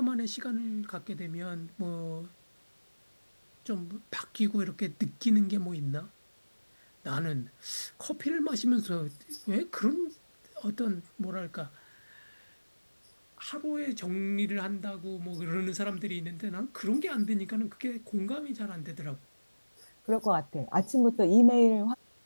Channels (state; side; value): inverted; both; correlation -1.00